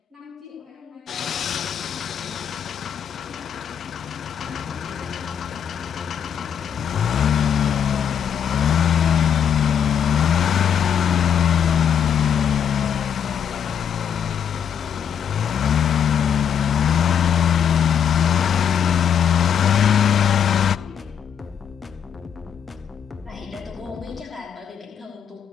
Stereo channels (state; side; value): quieter; right; 8.1 dB